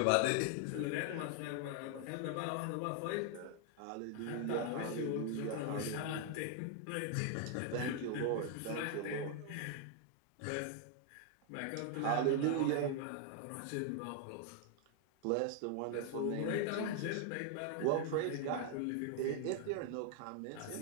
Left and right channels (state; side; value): different; both; correlation 0.00